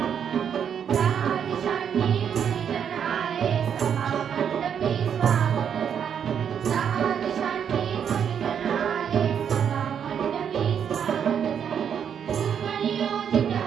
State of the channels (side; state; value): left; quieter; 8.1 dB